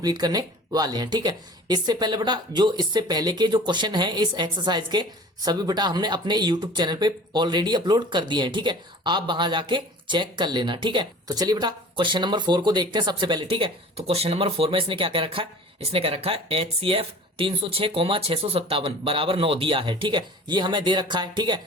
करने वाले हैं। ठीक है, इससे पहले बेटा जो इससे पहले के जो क्वेश्चन हैं इस एक्सरसाइज के सभी बेटा हमने अपने यूट्यूब चैनल पे ऑलरेडी अपलोड कर दिए हैं। ठीक है, आप वहां जाके चेक कर लेना। ठीक है, तो चलिए बेटा क्वेश्चन नंबर 4 को देखते हैं सबसे पहले। ठीक है, तो क्वेश्चन नंबर 4 में इसने क्या कह रखा है, इसने कह रखा है HCF 306,657 बराबर 9 दिया है। ठीक है, ये हमें दे रखा है। ठीक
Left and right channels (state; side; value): normal; both; correlation 0.43